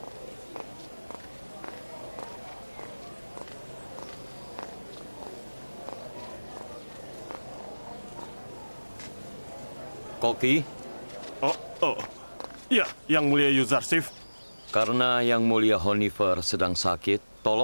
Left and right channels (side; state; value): both; inverted; correlation -1.00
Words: Koki? Ya, Yang Mulia Yuzarsif. Karena Yang Mulia Honifer sedang sakit,